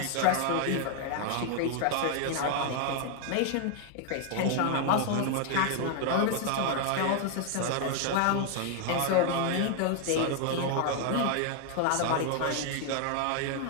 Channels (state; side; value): different; both; correlation 0.00